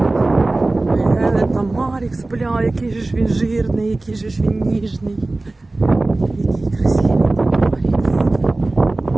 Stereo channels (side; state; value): left; quieter; 3.0 dB